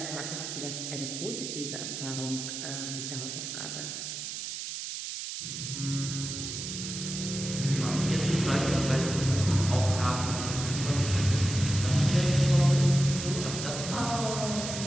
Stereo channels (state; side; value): noise; right; hiss, 6 dB below the sound